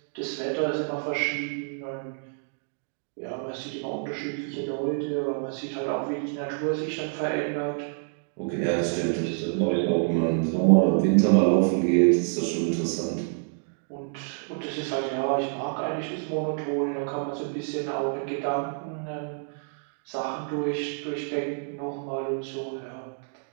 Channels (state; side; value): silent; left; digital silence